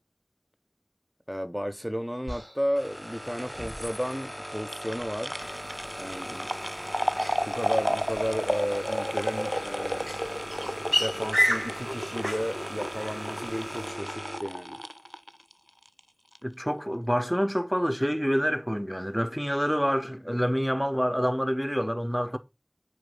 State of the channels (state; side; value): identical; both; correlation 1.00